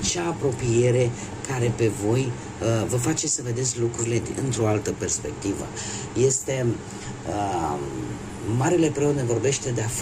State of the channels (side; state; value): both; identical; correlation 1.00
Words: apropiere care pe voi vă face să vedeți lucrurile într-o altă perspectivă. Este Marele Preot ne vorbește de a